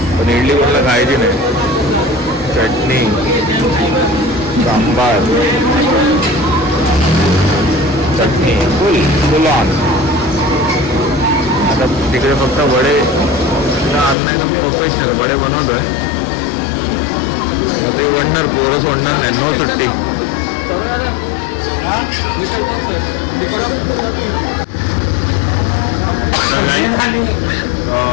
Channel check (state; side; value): drops out; right; at 14.2 s